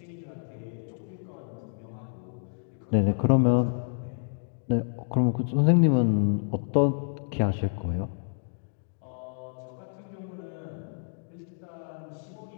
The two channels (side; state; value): right; silent; digital silence